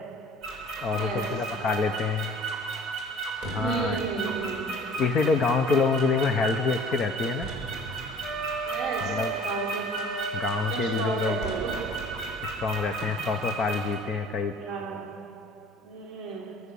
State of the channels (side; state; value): both; normal; correlation 0.49